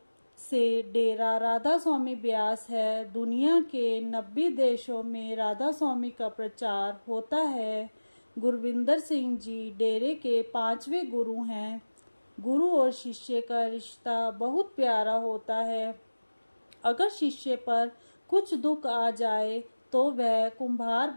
से डेरा राधा स्वामी ब्यास है। दुनिया के 90 देशों में राधा स्वामी का प्रचार होता है। गुरविंदर सिंह जी डेरे के 5वें गुरु हैं। गुरु और शिष्य का रिश्ता बहुत प्यारा होता है। अगर शिष्य पर कुछ दुख आ जाए तो वह कुम्हार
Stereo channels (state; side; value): inverted; both; correlation -1.00